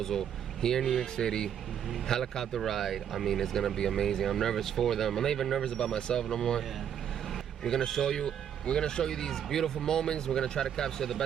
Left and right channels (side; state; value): left; quieter; 9.1 dB